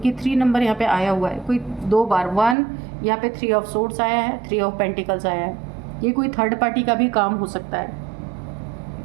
3 नंबर यहाँ पे आया हुआ है कोई 2 बार। 1 यहाँ पे 3 ऑफ सोर्ड्स आया है, 3 ऑफ पेंटिकल्स आया है। ये कोई थर्ड पार्टी का भी काम हो सकता है,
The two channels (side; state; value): left; drops out; at 2.6 s